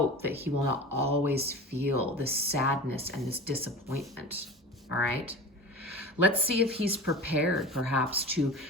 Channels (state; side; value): normal; both; correlation 0.34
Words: that he will not always feel this sadness and this disappointment. All right. Let's see if he's prepared perhaps to